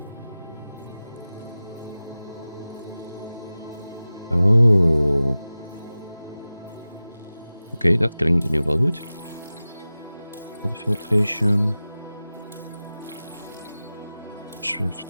Oh. Oké, dat klinkt in ieder geval goed. Water filtration.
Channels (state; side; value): inverted; both; correlation -0.96